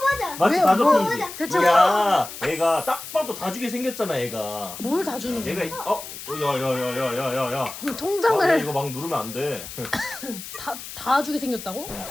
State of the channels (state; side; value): noise; left; hiss, 11 dB below the sound